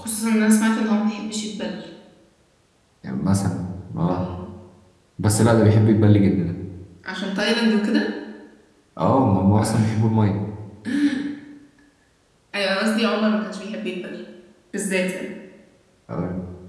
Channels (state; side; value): identical; both; correlation 1.00